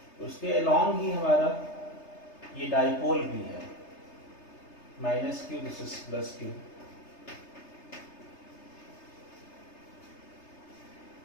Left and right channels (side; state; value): right; late; 3.3 ms